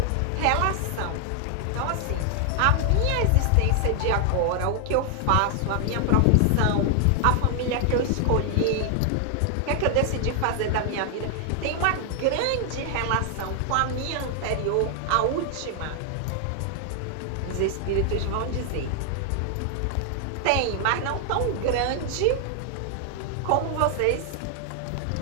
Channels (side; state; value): both; different; correlation 0.00